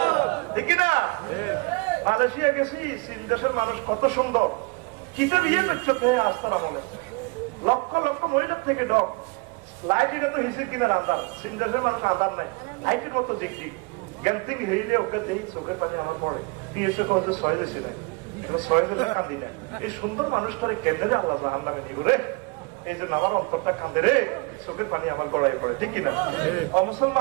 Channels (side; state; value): left; quieter; 28.0 dB